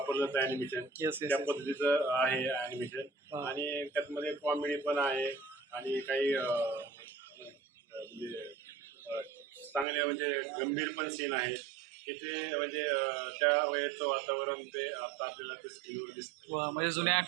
जातं ॲनिमेशन त्या पद्धतीचं आहे ॲनिमेशन. आणि त्यातमध्ये कॉमेडी पण आहे आणि काही म्हणजे चांगले म्हणजे गंभीर पण सीन आहेत की ते म्हणजे त्या वेळेचं वातावरण ते आता आपल्याला ते स्क्रीनवर दिसतं. म्हणजे जुन्या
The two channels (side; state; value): left; drops out; at 9.9 s